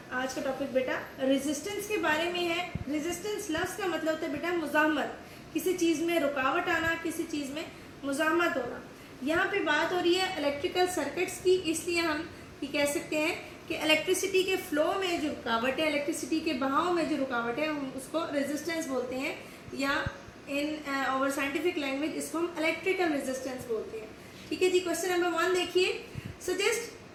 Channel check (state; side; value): identical; both; correlation 1.00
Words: आज का टॉपिक बेटा resistance के बारे में है. Resistance लफ्ज़ का मतलब होता है बेटा मुज़ाहमत, किसी चीज़ में रुकावट आना, किसी चीज़ में मुज़ाहमत होना. यहाँ पे बात हो रही है इलेक्ट्रिकल सर्किट्स की, इसलिए हम ये कह सकते हैं कि इलेक्ट्रिसिटी के फ्लो में जो रुकावट है, इलेक्ट्रिसिटी के बहाव में जो रुकावट है, हम उसको रेजिस्टेंस बोलते हैं, या इन आवर साइंटिफिक लैंग्वेज इसको हम इलेक्ट्रिकल रेजिस्टेंस बोलते हैं. ठीक है जी. क्वेश्चन नंबर 1 देखिए.